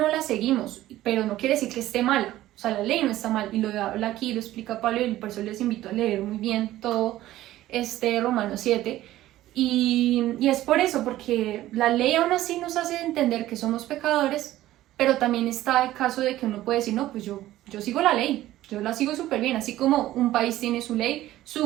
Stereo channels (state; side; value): quieter; left; 14.8 dB